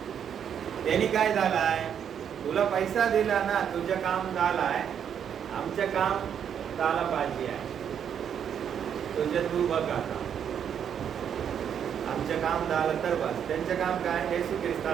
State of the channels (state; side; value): quieter; left; 8.4 dB